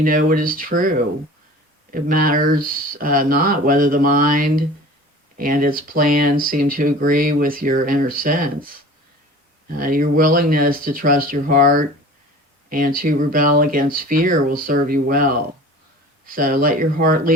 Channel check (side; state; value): both; normal; correlation 0.41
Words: know what is true. It matters not whether the mind and its plans seem to agree with your inner sense. Your willingness to trust your heart and to rebel against fear will serve you well. So let your heart